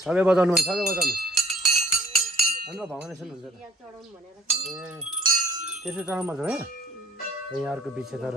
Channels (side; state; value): both; normal; correlation 0.56